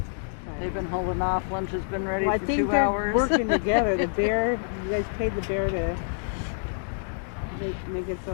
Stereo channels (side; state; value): right; silent; digital silence